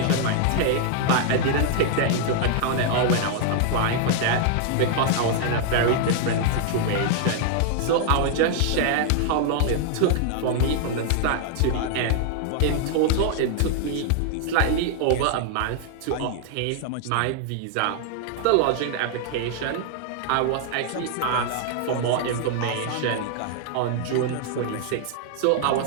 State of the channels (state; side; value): different; both; correlation 0.00